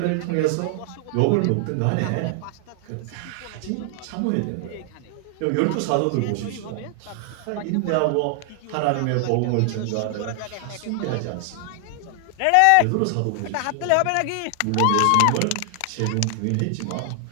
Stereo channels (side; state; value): both; different; correlation 0.00